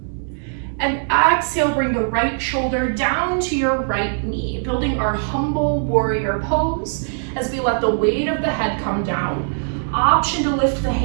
And exhale, bring the right shoulder down to your right knee, building our humble warrior pose as we let the weight of the head come down. Option to lift the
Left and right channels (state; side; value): silent; left; digital silence